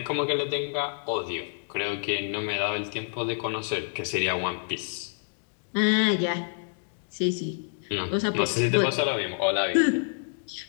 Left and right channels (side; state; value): right; silent; digital silence